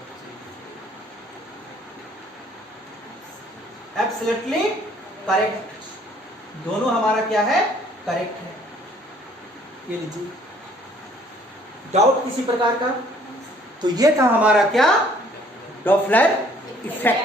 एब्सोल्युटली करेक्ट, दोनों हमारा क्या है, करेक्ट है। ये लीजिए, डाउट किसी प्रकार का, तो ये था हमारा क्या, डॉपलर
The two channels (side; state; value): both; normal; correlation 0.59